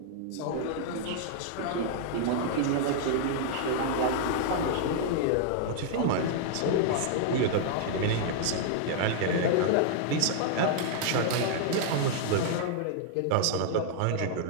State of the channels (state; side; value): different; both; correlation -0.01